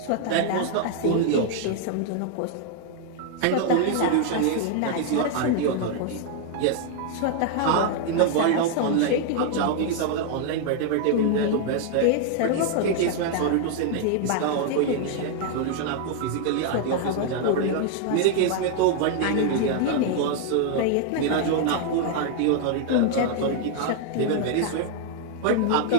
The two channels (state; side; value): different; both; correlation 0.00